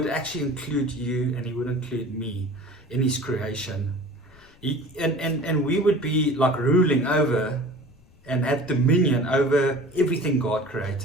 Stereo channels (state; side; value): noise; left; rumble, 28 dB below the sound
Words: actually include you, and He would include me in His creation. And we would be like ruling over and have dominion over everything God